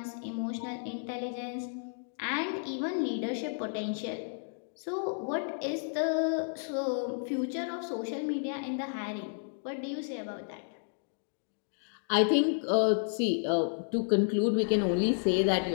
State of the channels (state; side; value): silent; right; digital silence